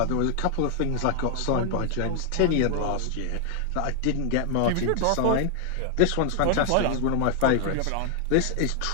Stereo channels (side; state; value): both; different; correlation 0.00